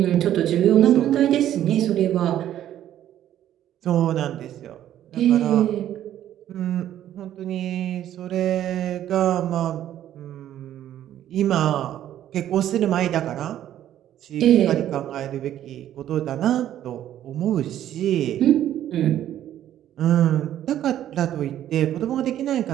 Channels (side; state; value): left; quieter; 11.7 dB